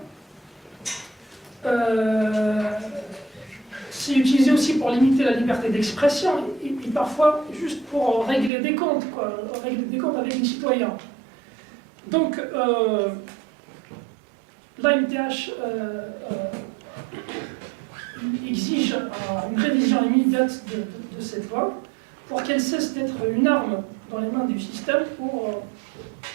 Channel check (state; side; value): drops out; left; at 8.5 s